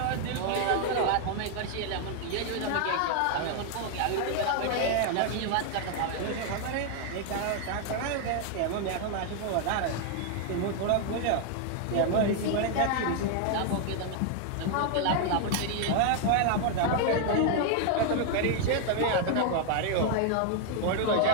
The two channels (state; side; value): different; both; correlation 0.00